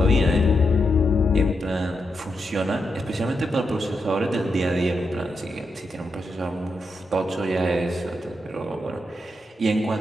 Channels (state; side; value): normal; both; correlation 0.84